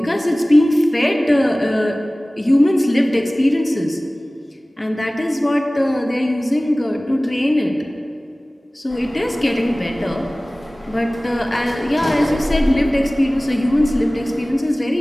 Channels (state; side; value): normal; both; correlation 0.98